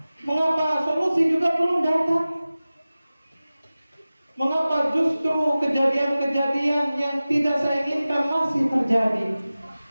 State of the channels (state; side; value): inverted; both; correlation -0.97